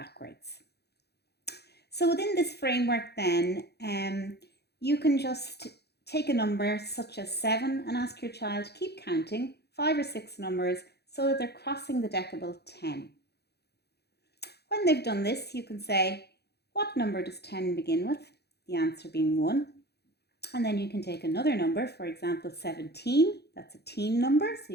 So within this framework then, you can just take a number such as 7 and ask your child to keep counting 5 or 6 numbers so that they're crossing the decibel 10. When they've done this, you can say, what number does 10 begin with? The answer being 1. And then you can take another number, for example, 17. That's a teen number, so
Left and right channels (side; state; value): right; late; 0.48 ms